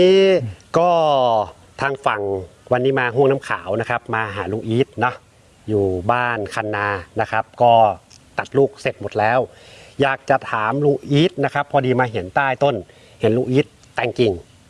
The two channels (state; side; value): identical; both; correlation 1.00